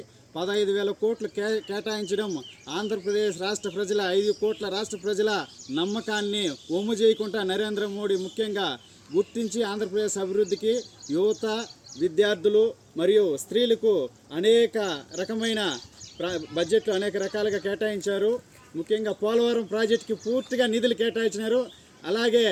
15,000 కోట్లు కేటాయించడం ఆంధ్రప్రదేశ్ రాష్ట్ర ప్రజల 5 కోట్ల రాష్ట్ర ప్రజల నమ్మకాన్ని ఒమ్ము చేయకుండా నరేంద్ర మోడీ ముఖ్యంగా గుర్తించి ఆంధ్రప్రదేశ్ అభివృద్ధికి యువత, విద్యార్థులు మరియు స్త్రీలకు అనేక రకమైన బడ్జెట్లో అనేక రకాలుగా కేటాయించారు. ముఖ్యంగా పోలవరం ప్రాజెక్టుకి పూర్తిగా నిధులు కేటాయించినారు. అలాగే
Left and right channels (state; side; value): identical; both; correlation 1.00